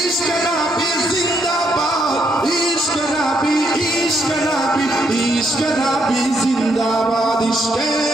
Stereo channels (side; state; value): both; normal; correlation 0.75